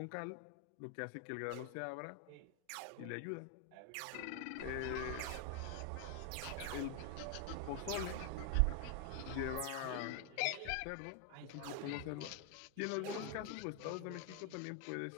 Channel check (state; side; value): different; both; correlation 0.00